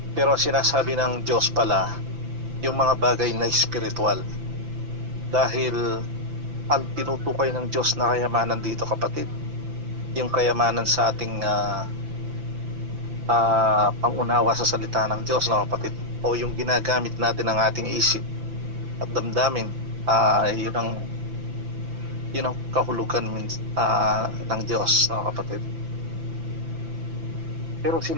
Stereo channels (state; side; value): late; left; 5.9 ms